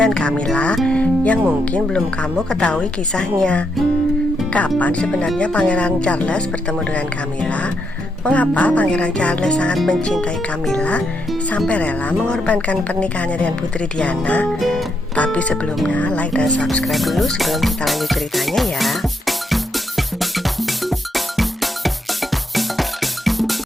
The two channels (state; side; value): normal; both; correlation 0.79